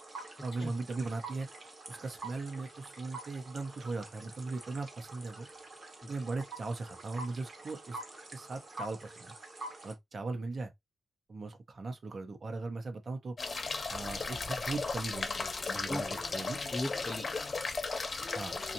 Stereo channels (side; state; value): both; normal; correlation 0.88